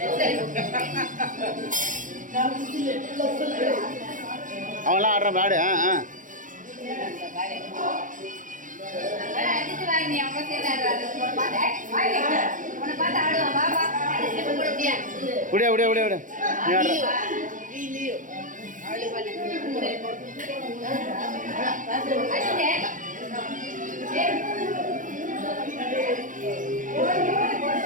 அவன்லாம் ஆடுறான் பாடு. விட விட விட விட. நீ ஆடுற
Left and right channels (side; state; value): left; late; 0.38 ms